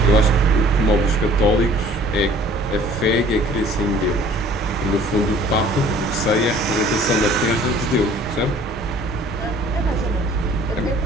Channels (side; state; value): both; normal; correlation 0.53